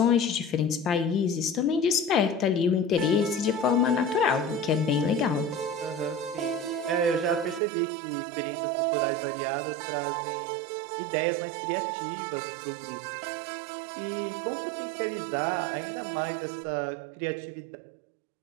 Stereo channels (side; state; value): left; drops out; at 7.6 s